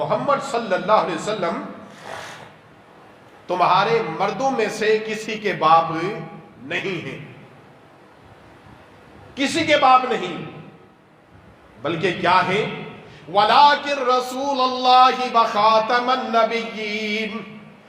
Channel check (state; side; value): identical; both; correlation 1.00